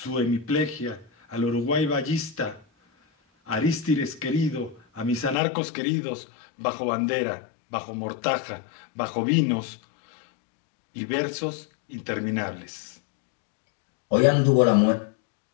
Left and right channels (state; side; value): drops out; right; at 5.4 s